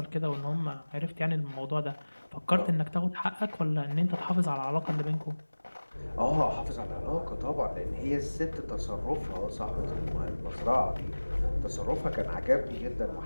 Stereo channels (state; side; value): inverted; both; correlation -1.00